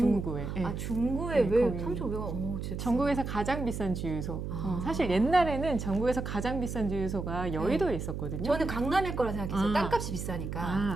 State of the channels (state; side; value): noise; right; hum, 5 dB below the sound